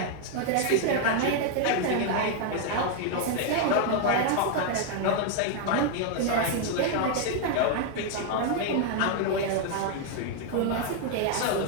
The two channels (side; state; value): both; different; correlation 0.00